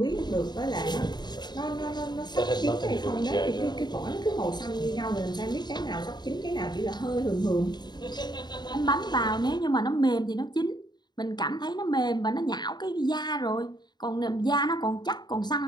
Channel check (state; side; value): late; right; 0.21 ms